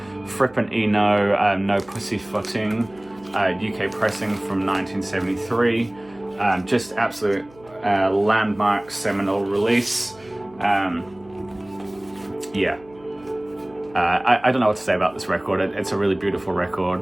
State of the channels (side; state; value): right; noise; hum, 25 dB below the sound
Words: Fripp and Eno, No Pussyfooting, UK pressing from 1973. Just absolute landmark seminal release. Yeah. I don't know what to say about this record. It's a really beautiful